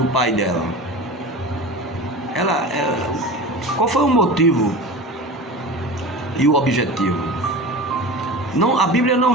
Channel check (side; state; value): both; normal; correlation 0.32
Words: pai dela? Qual foi o motivo e o objetivo? Não, a Bíblia não